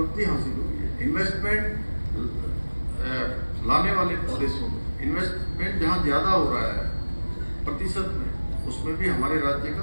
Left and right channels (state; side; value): inverted; both; correlation -1.00